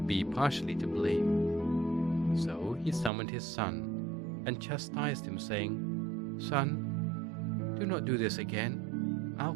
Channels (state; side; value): drops out; left; at 3.1 s